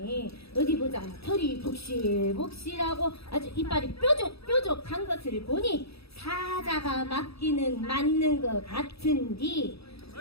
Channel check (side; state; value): right; late; 0.77 ms